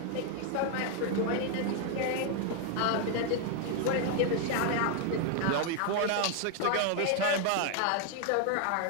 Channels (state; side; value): different; both; correlation 0.00